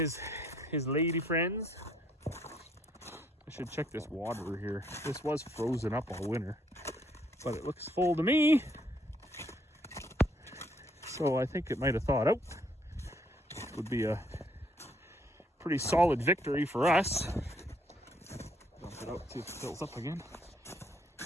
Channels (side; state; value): both; normal; correlation 0.68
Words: lady friends. I should check this water here. This was frozen up all winter, but it looks full to me. So I think it might have thawed out. Would be a pretty solid victory for us. Dump it out, see if it fills up again.